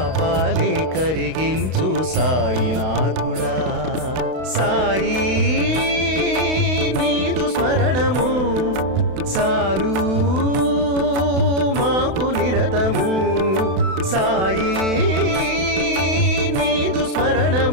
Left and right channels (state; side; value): late; left; 32 ms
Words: కరిగించు సాయినాథుడా సాయి నీదు స్మరణము చాలు మాకు నిరతము సాయి నీదు